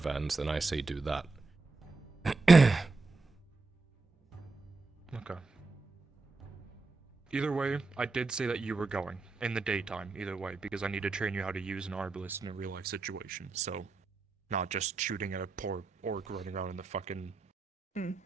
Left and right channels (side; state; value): left; quieter; 3.9 dB